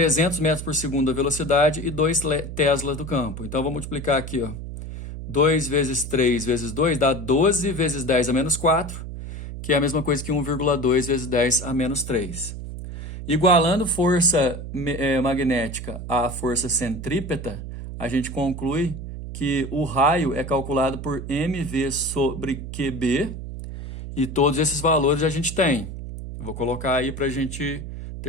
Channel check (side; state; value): right; noise; hum, 9 dB below the sound